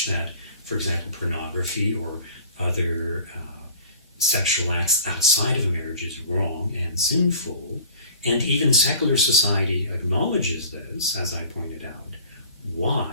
that, for example, pornography or other sexual acts outside of marriage is wrong and sinful, and even secular society acknowledges this, as I pointed out,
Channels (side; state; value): both; inverted; correlation -0.46